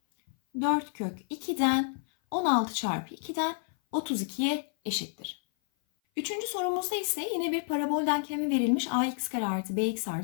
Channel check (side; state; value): right; silent; 56 dB below the other